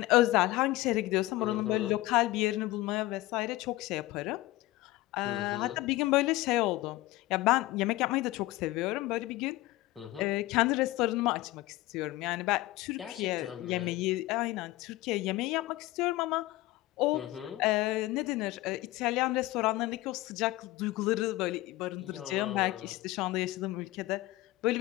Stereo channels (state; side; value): quieter; right; 18.4 dB